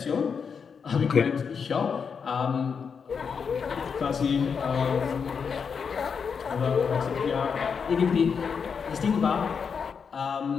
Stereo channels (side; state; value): right; quieter; 6.2 dB